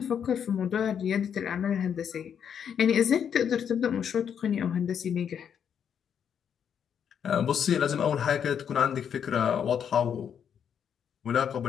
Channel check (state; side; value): quieter; right; 8.1 dB